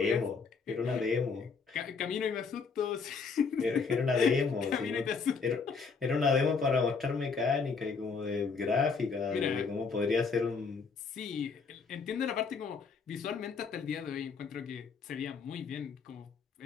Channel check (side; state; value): right; quieter; 5.1 dB